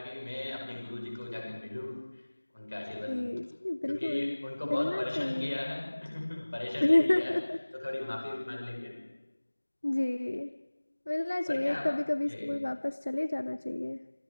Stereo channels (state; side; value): inverted; both; correlation -1.00